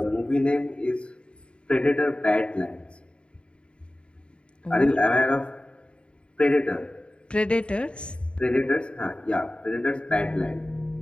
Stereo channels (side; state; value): right; late; 0.055 ms